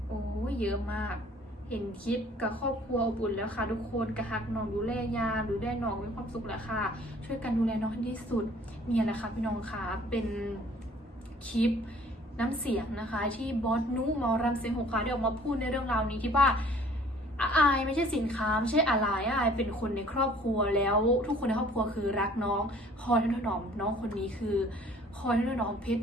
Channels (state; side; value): normal; both; correlation 0.54